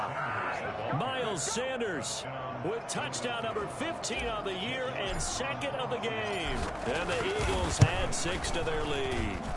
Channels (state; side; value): identical; both; correlation 1.00